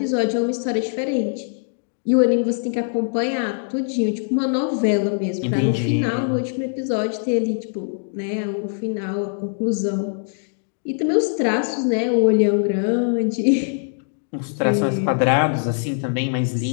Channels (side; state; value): right; silent; digital silence